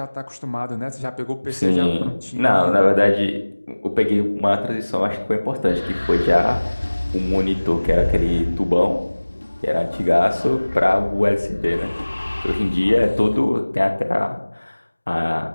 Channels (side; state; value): both; inverted; correlation -1.00